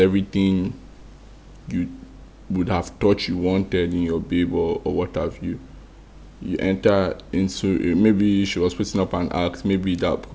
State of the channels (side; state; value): both; identical; correlation 1.00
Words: you would have thought you wanted in your babe or what have you. You enter into maybe she was putting up an act, maybe